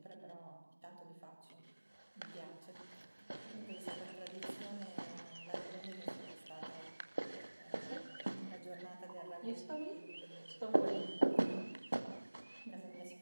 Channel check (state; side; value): inverted; both; correlation -1.00